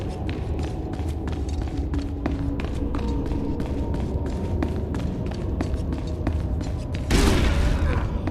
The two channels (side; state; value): both; identical; correlation 1.00